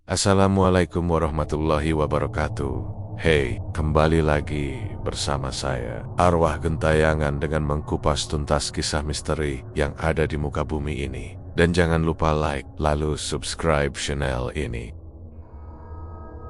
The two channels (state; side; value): identical; both; correlation 1.00